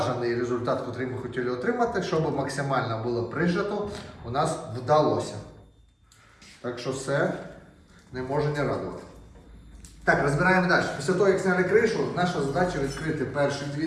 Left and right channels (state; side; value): identical; both; correlation 1.00